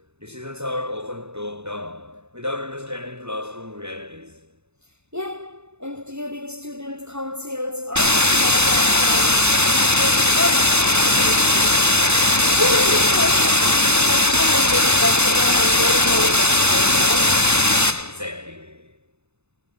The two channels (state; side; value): late; left; 0.81 ms